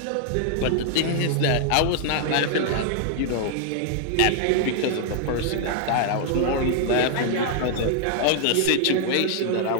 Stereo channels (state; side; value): different; both; correlation -0.01